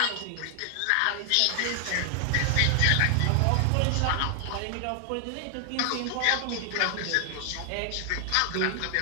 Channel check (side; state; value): both; different; correlation 0.00